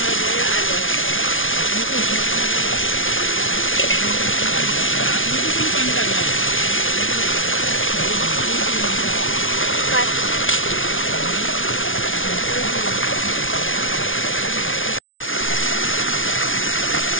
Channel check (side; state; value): right; late; 0.57 ms